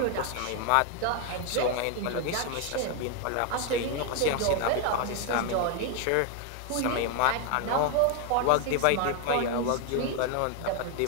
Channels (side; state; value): both; different; correlation 0.01